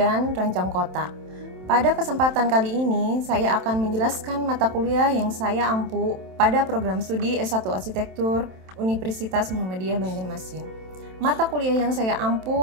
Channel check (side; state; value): left; late; 27 ms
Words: rancang kota. Pada kesempatan kali ini, saya akan menjelaskan mata kuliah yang saya ampu pada program studi S1 Arsitektur Universitas Muhammadiyah Banjarmasin. Mata kuliah yang saya